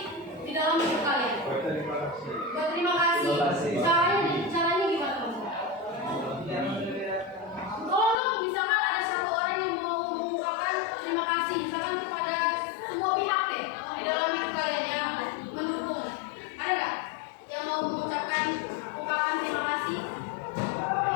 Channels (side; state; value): right; drops out; at 8.2 s